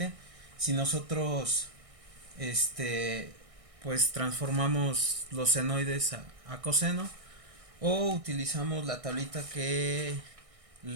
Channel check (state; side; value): late; left; 1.6 ms